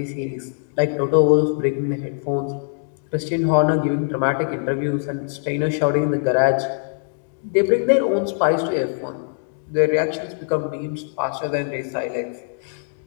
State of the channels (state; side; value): silent; right; digital silence